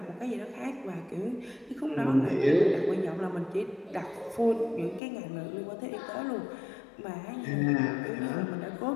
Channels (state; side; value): drops out; right; at 5.0 s